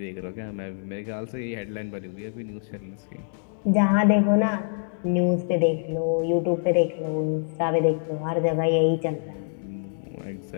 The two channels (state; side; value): silent; right; digital silence